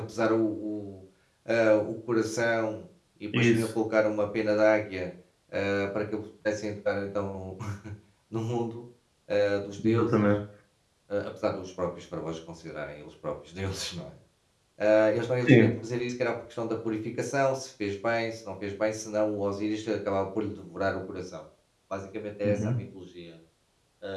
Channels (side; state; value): both; identical; correlation 1.00